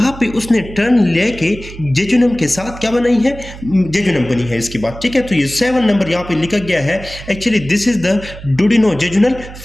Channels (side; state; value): right; noise; hum, 14 dB below the sound